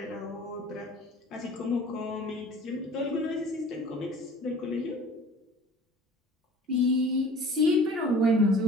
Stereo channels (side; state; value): both; normal; correlation 0.45